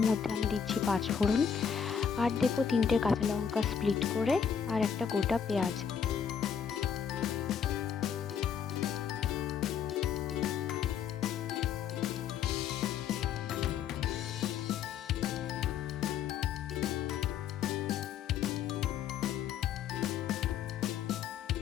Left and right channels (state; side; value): quieter; right; 7.5 dB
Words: মধ্যে আমি দিচ্ছি 5 ফোড়ন, আর দেবো 3টে কাঁচা লঙ্কা স্প্লিট করে, আর একটা গোটা পেঁয়াজ।